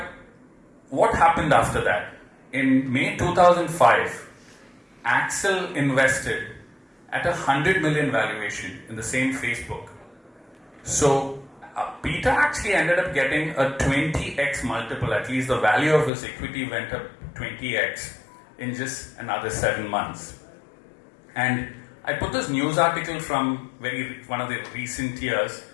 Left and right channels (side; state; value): right; drops out; at 16.1 s